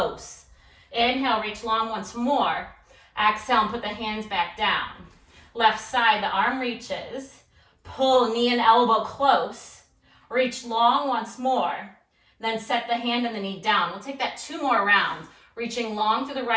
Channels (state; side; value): identical; both; correlation 1.00